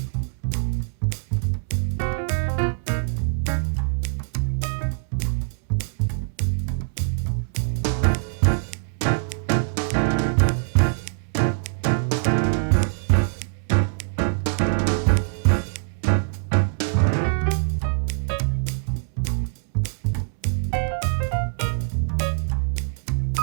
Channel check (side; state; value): left; silent; 63 dB below the other